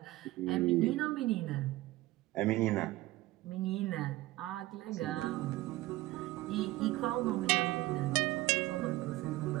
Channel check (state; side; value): quieter; left; 18.0 dB